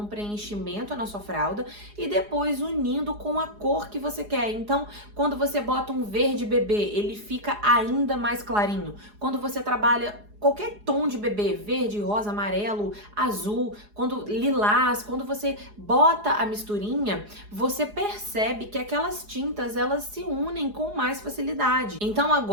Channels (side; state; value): left; late; 4.8 ms